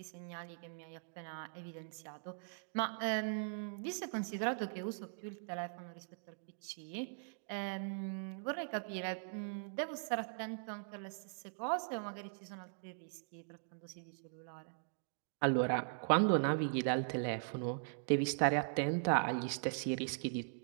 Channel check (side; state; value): left; silent; digital silence